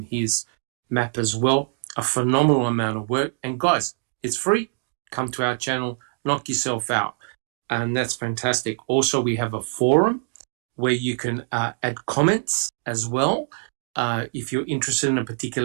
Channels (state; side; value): silent; left; 62 dB below the other